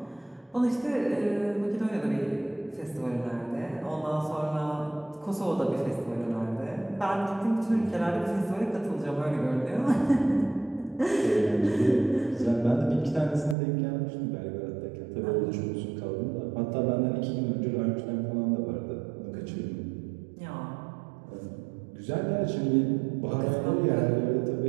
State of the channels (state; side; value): drops out; left; at 13.6 s